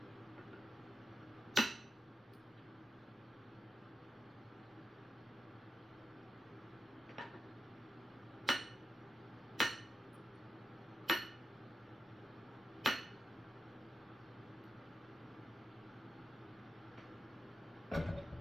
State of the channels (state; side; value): normal; both; correlation 0.89